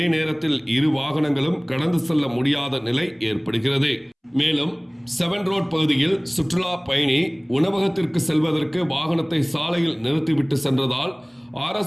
நேரத்தில் 2 வாகனங்களும் கடந்து செல்ல முடியாத நிலை ஏற்படுகிறது. மேலும் 7 ரோட் பகுதியில் சுற்றுலா பயணி உணவகத்திற்கு செல்வதற்கு வாகனத்தை சாலையில் நிறுத்திவிட்டு சென்றதால்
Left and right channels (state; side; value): identical; both; correlation 1.00